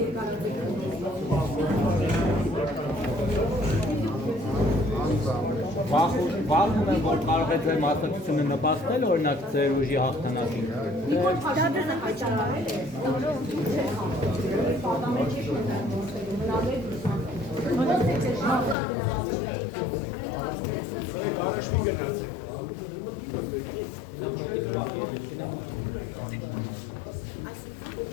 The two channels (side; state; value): right; drops out; at 18.8 s